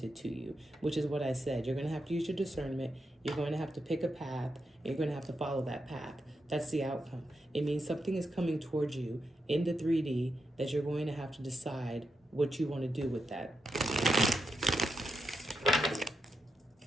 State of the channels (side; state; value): both; normal; correlation 0.85